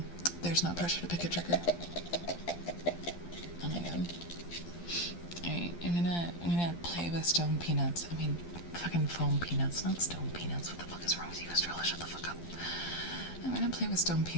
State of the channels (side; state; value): right; late; 12 ms